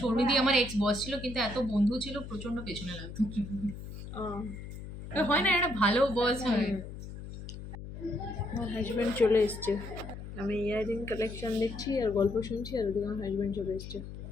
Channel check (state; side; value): noise; left; hum, 10 dB below the sound